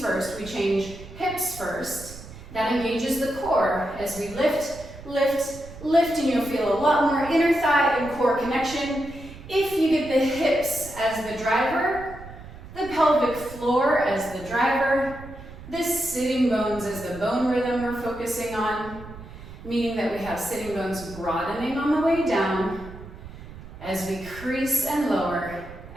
first, we change hips first. That engages the core as we lift, lift, lift, and you'll feel a lot more inner thigh and core connection. If you get the hips as the driver, the pelvic floor as the driver, the sitting bones as the bone rhythm we're focusing on, meaning that we have sitting bones broadening on the way down as we crease and lower.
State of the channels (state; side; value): noise; right; rumble, 15 dB below the sound